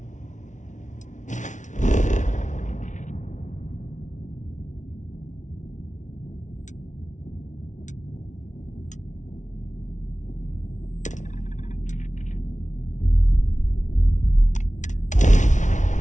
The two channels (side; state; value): right; late; 0.36 ms